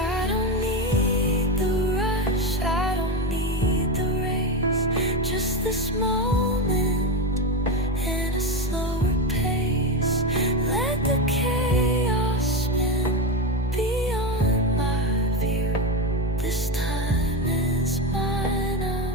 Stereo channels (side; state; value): both; normal; correlation 0.15